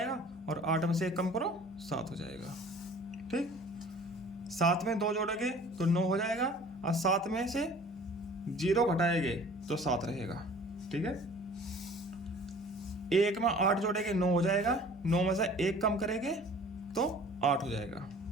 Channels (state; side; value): normal; both; correlation 0.48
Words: और 8 में से 1 कम करो 7 हो जाएगा। ठीक, 7 में 2 जोड़ेंगे तो 9 हो जाएगा, और 7 में से 0 घटाएंगे तो 7 रहेगा। ठीक है, 1 में 8 जोड़ेंगे 9 हो जाएगा। 9 में से 1 कम करेंगे तो 8 हो जाएगा।